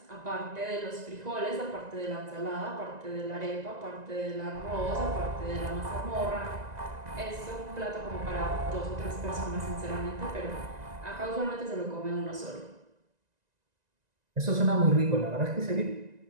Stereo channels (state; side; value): late; left; 1.9 ms